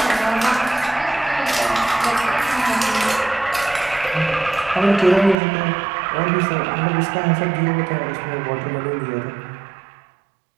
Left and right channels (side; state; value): left; drops out; at 5.4 s